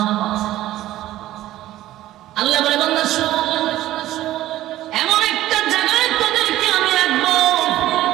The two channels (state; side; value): quieter; left; 14.7 dB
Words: আল্লাহ বলে বান্দা শোন, এমন একটা জায়গায় তোদেরকে আমি রাখবো,